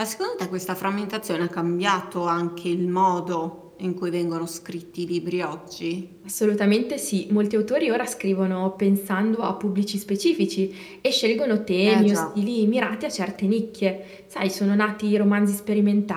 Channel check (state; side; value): identical; both; correlation 1.00